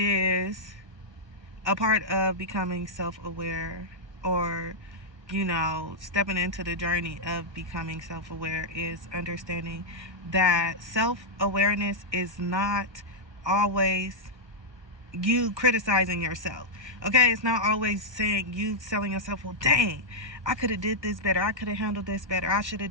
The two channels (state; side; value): late; left; 1.2 ms